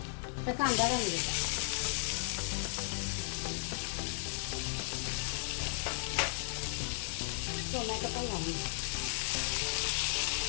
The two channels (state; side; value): silent; right; digital silence